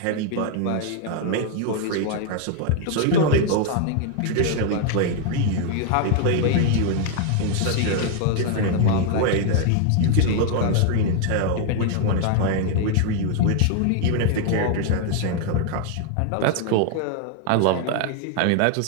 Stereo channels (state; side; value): different; both; correlation 0.00